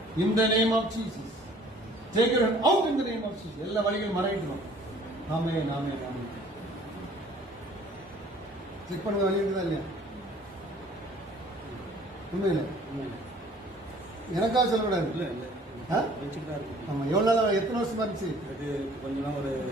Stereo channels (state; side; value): normal; both; correlation 0.53